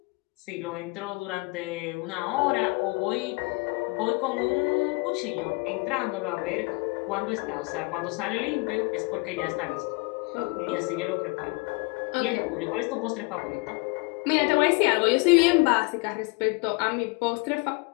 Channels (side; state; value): right; quieter; 28.4 dB